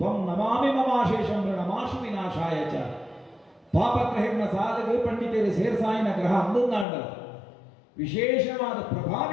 ನಮಾಮಿ ಮಮಾಶೇಷಂ ನಮಾಶು ವಿನಾಶಾಯ ಚ ಪಾಪಗ್ರಹಿನ ಸಾಧಕ ಪಂಡಿತರು ಸೇರ್ಸಾಯಿನ ಗ್ರಹ ಅಂದುಂದಾಂಡ ವಿಶೇಷವಾದ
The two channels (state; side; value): drops out; right; at 6.9 s